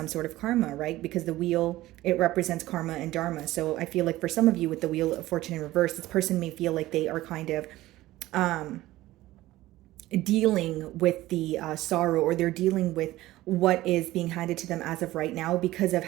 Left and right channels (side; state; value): left; quieter; 16.6 dB